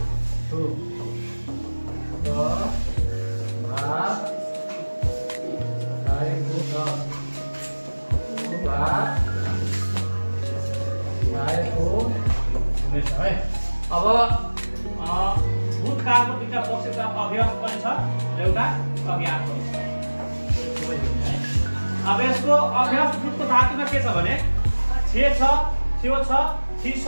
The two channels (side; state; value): both; inverted; correlation -1.00